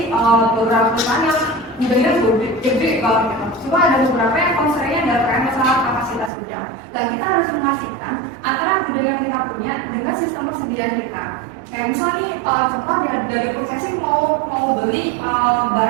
beberapa perusahaan yang gudangnya gede banget gitu. Cuma ada beberapa yang constraintnya adalah terkait masalah kapasitas gudang. Dan kita harus memastikan antara gudang yang kita punya dengan sistem persediaan kita. Kayak misalnya nih, contoh dari processing mau beli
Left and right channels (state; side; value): drops out; left; at 6.3 s